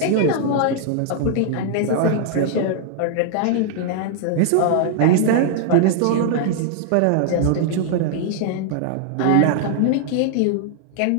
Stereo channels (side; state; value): both; different; correlation -0.01